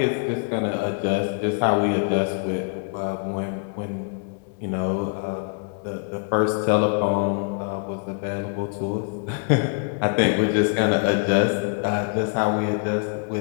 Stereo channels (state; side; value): quieter; right; 39.6 dB